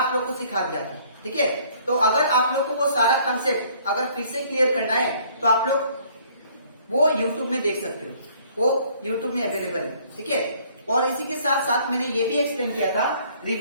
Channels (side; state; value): both; inverted; correlation -0.59